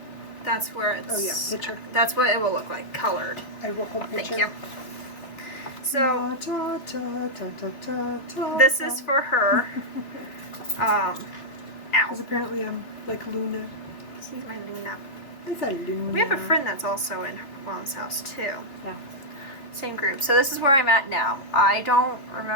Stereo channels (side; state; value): right; late; 2.7 ms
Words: that's where it's... Oh yeah, picture. That's what it will look like, colored. I will hold picture. Thank you. So, this is for her. Ow. Because apparently I'm like Luna. She's my Luna. It's a Luna. We have a friend that's also in Mom's house too. Yeah. Same group. So this is where I'm at now. I don't